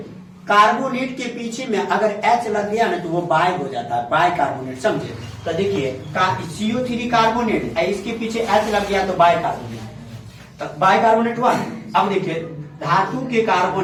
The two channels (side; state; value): both; identical; correlation 1.00